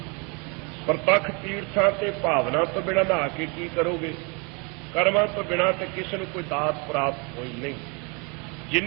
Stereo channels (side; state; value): left; quieter; 32.1 dB